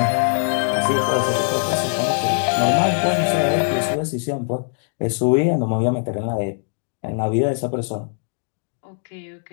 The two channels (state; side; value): silent; right; digital silence